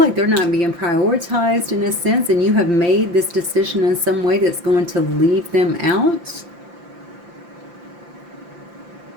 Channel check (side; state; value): left; late; 5.8 ms